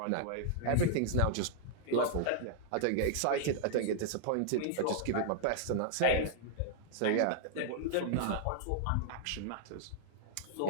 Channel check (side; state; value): both; different; correlation -0.01